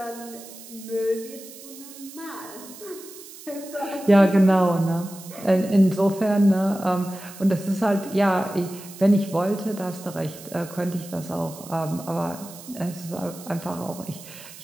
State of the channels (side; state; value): right; noise; hiss, 16 dB below the sound